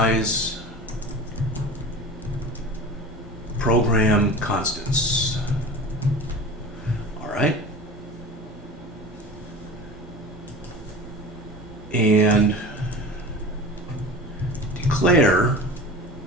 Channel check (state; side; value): normal; both; correlation 0.35